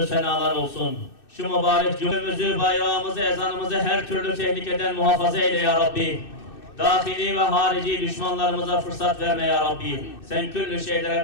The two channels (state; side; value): late; right; 2.6 ms